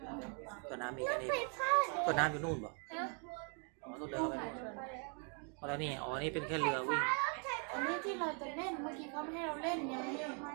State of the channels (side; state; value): left; quieter; 39.1 dB